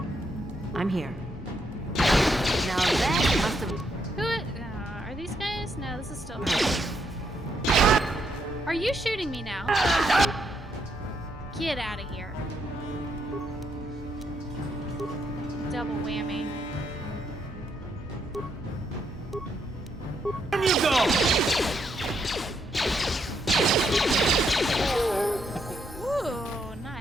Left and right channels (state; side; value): normal; both; correlation 0.76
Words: I'm here. Now that must have... Who? Are these guys? No, this is still... Are you shooting me now? Get out of here. Double whammy. There you go! Ooh,